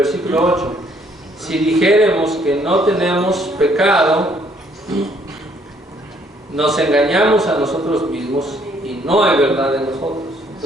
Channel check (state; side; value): normal; both; correlation 0.65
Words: 8. Si dijéremos que no tenemos pecado, nos engañamos a nosotros mismos y no hay verdad en nosotros.